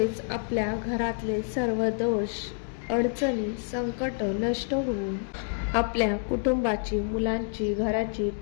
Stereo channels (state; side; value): silent; right; digital silence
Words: आपल्या घरातले सर्व दोष, अडचणी, संकट नष्ट होऊन आपल्या कुटुंबाची, मुलांची, घराची